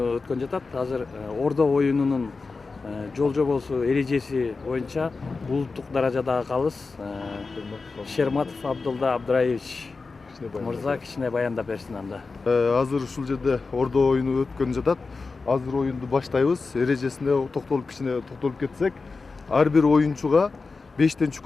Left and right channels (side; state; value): right; quieter; 4.2 dB